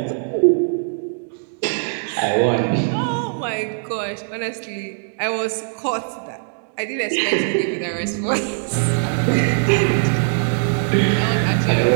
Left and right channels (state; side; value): silent; left; digital silence